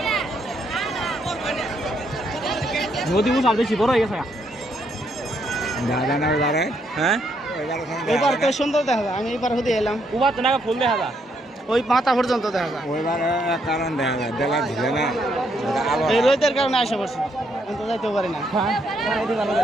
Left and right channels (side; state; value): both; normal; correlation 0.74